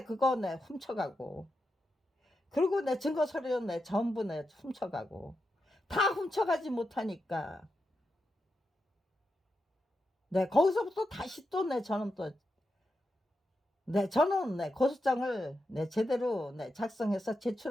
그거 네, 훔쳐가고 그리고 내 증거 서류 내 전부 내 훔쳐가고 다 훔쳐가지 못하니까 네, 거기서부터 다시 또 내 저는 또 네, 저는 네, 고소장을 네, 제대로 네, 작성해서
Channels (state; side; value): normal; both; correlation 0.87